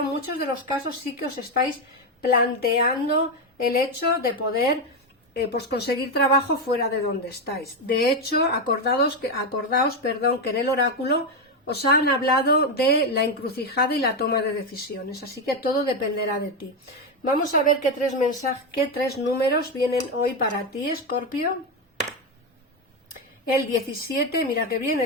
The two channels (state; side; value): normal; both; correlation 0.09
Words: en muchos de los casos sí que os estáis planteando el hecho de poder pues conseguir trabajo fuera de donde estáis. De hecho, acordaos que en el oráculo os han hablado de la encrucijada y la toma de decisiones, así que todo dependerá de ti. Vamos a ver qué tres números vienen hoy para ti, Escorpio. El 17, mira que bien,